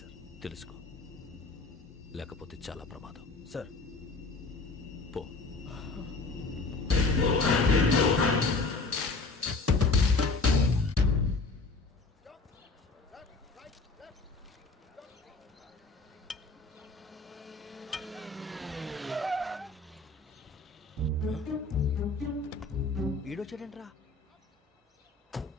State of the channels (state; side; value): quieter; right; 3.6 dB